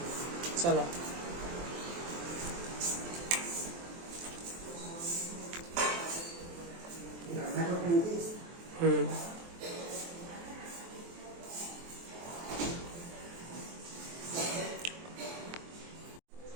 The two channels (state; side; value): late; left; 23 ms